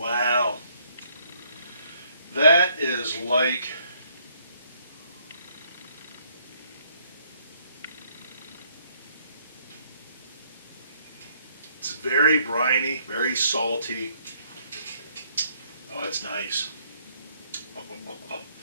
That is like it's very briny, very salty. Oh, it's nice.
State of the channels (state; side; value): inverted; both; correlation -0.67